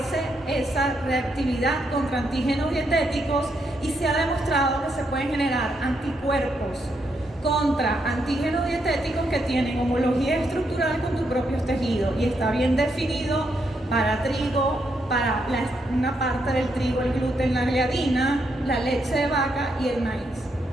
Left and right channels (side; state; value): both; normal; correlation 0.79